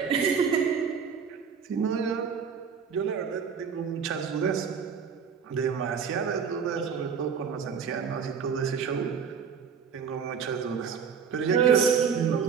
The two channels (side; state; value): left; quieter; 6.6 dB